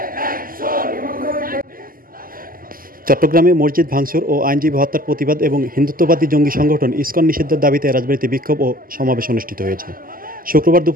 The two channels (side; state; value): left; late; 0.41 ms